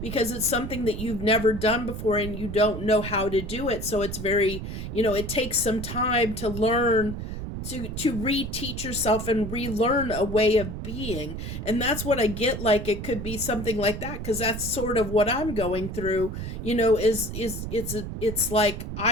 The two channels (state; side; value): noise; right; rumble, 6 dB below the sound